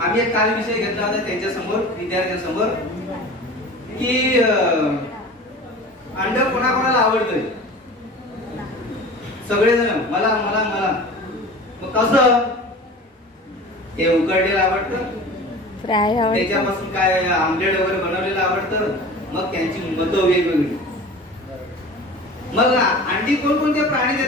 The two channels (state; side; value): normal; both; correlation 0.38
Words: एक काल विषय घेतला होता त्यांच्या समोर विद्यार्थ्यांसमोर की अंड कोणाकोणाला आवडतंय. सगळेजण मला मला मला. मग कसं ते उकडलेलं आवडतं, फ्राय आवडतं, त्याच्यापासून काय आमलेट वगैरे बनवलेलं आवडतं. मग त्यांची मतं वेगवेगळी. मग अंडी कोणकोणते प्राणी